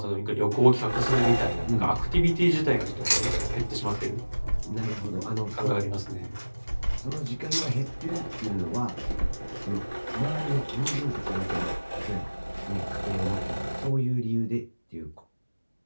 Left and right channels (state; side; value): inverted; both; correlation -1.00